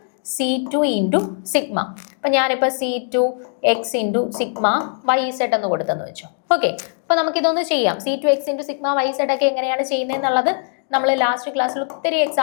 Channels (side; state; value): right; silent; digital silence